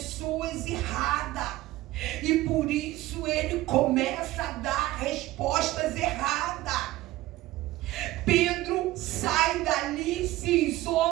erradas. E por isso ele começa a dar respostas erradas. Pedro sai dali, se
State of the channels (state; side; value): quieter; left; 16.8 dB